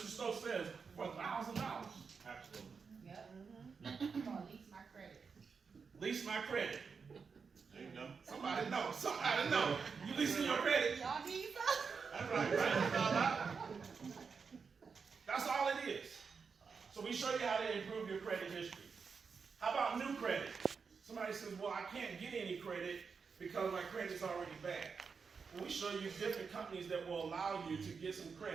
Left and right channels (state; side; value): quieter; left; 5.5 dB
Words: Stokes says, for $1,000. Absolutely. Yep. Come on, lease my credit. Lease my credit. There you go. Somebody know. Somebody know. You leasing your credit. Y'all need some? That's right. That's all it is. So we show you how to improve your credit history. How about new credit? Somebody says, well, I can't get any credit because my credit's already bad. Well, we show you different companies that will allow you to get some